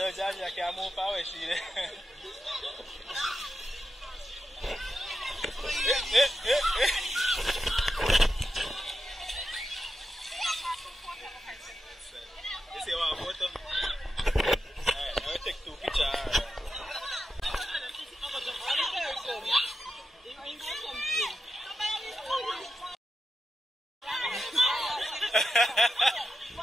Johnny, I can't move forward, see there. You see one photo? Alright, I will take two pictures.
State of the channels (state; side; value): normal; both; correlation 0.89